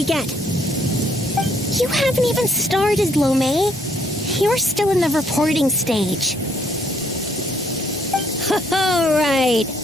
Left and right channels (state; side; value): normal; both; correlation 0.67